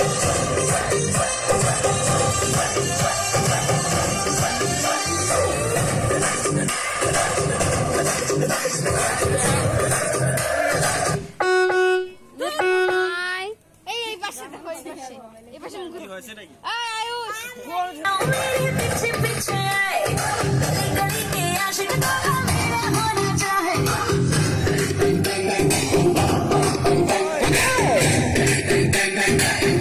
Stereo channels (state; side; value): identical; both; correlation 1.00